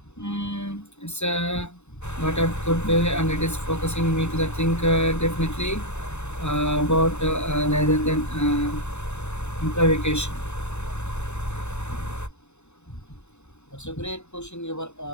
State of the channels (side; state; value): right; late; 0.82 ms